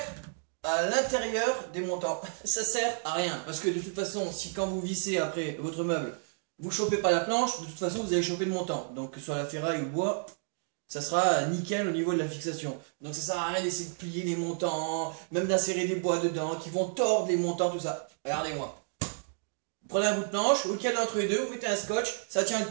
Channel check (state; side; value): silent; left; digital silence